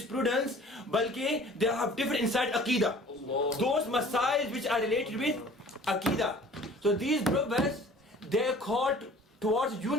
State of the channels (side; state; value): both; normal; correlation 0.49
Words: balki they have differed inside aqidah. Those masail which are related with aqidah. So these brothers, they're called towards